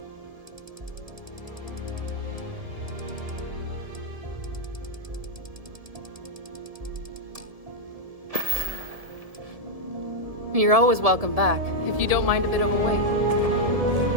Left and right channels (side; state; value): left; late; 1.7 ms